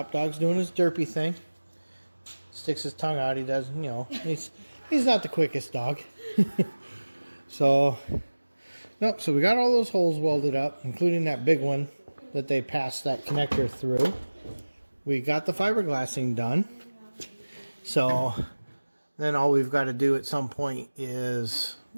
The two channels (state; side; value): inverted; both; correlation -1.00